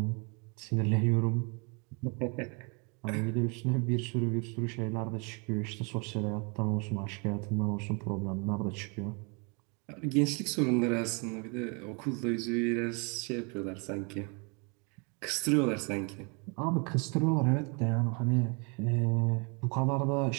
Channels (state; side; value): quieter; left; 33.6 dB